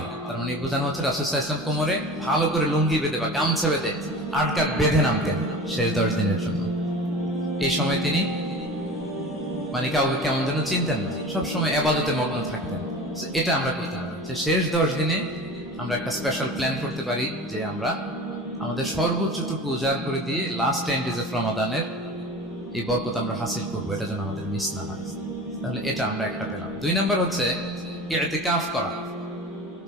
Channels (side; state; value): both; normal; correlation 0.35